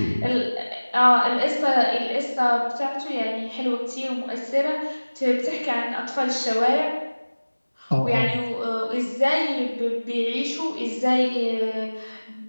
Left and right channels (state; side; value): inverted; both; correlation -1.00